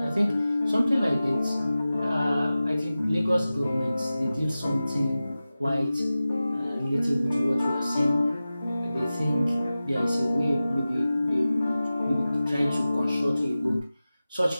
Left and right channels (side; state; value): both; inverted; correlation -0.95